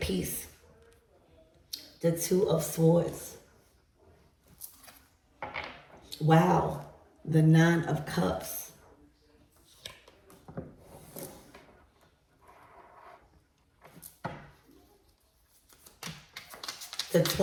peace. The Two of Swords. Wow. The Nine of Cups. The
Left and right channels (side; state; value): both; identical; correlation 1.00